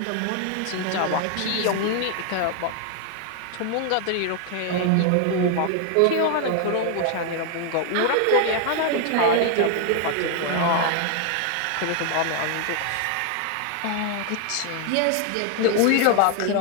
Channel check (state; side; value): different; both; correlation 0.00